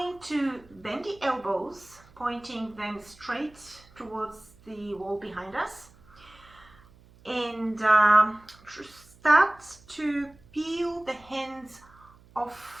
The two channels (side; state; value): right; noise; hum, 26 dB below the sound